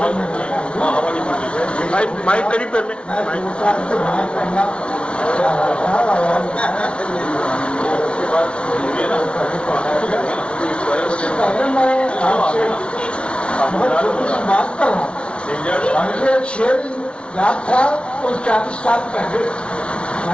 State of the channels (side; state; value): right; late; 0.059 ms